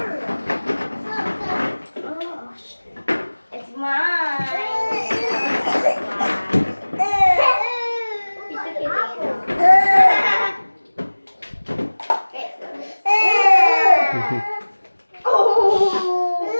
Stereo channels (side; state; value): both; inverted; correlation -1.00